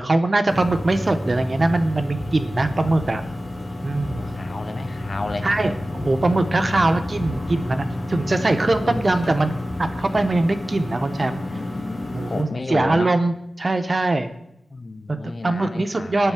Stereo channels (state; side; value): normal; both; correlation 0.96